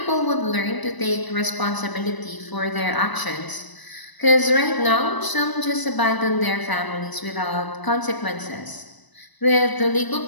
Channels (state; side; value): late; right; 1.0 ms